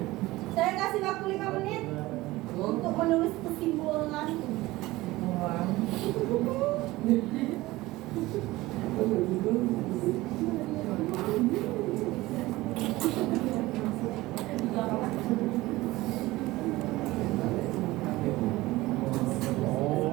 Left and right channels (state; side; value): quieter; left; 18.9 dB